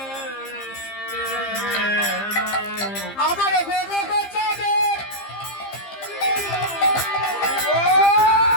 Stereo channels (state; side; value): late; right; 15 ms